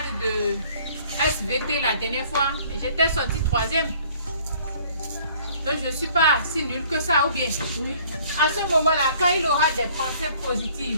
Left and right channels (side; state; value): both; inverted; correlation -0.56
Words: de SVT la dernière fois, mais j'étais sorti 3e. Donc je ne suis pas si nulle que ça, ou bien. À ce moment-là, quand il aura des pensées